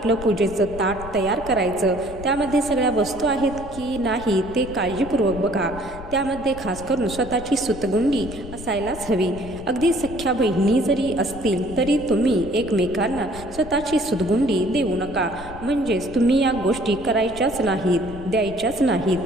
पूजेचं ताट तयार करायचं. त्यामध्ये सगळ्या वस्तू आहेत की नाही ते काळजीपूर्वक बघा. त्यामध्ये खास करून स्वतःची सूतगुंडी असायलाच हवी. अगदी सख्या बहिणी जरी असतील तरी तुम्ही एकमेकांना स्वतःची सूतगुंडी देऊ नका. म्हणजेच तुम्ही या गोष्टी करायच्याच नाहीत, द्यायच्याच नाहीत.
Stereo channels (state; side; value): noise; left; rumble, 14 dB below the sound